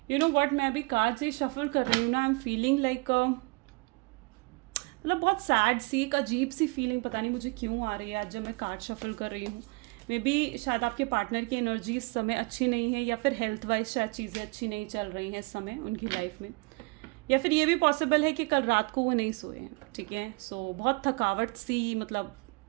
You know what, मैं अभी कार्ड से शफल कर रही हूँ ना, आई एम फीलिंग लाइक मतलब बहुत सैड सी, एक अजीब सी फीलिंग पता नहीं मुझे क्यों आ रही है आज जब मैं कार्ड शफल कर रही हूँ। मे बी शायद आपके पार्टनर की एनर्जी इस समय अच्छी नहीं है, या फिर हेल्थ वाइज शायद चीज़ें अच्छी नहीं चल रही हैं इस समय उनकी लाइफ में, या फिर ये भी पॉसिबल है कि कल रात को वो नहीं सोए हैं, ठीक है। सो बहुत थकावट सी, मतलब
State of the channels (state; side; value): quieter; left; 28.5 dB